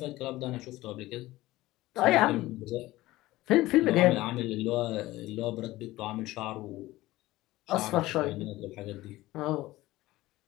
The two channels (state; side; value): quieter; right; 17.6 dB